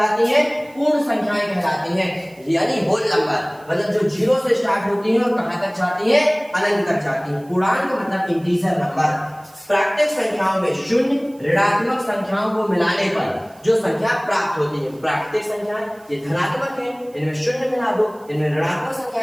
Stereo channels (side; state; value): right; noise; hiss, 28 dB below the sound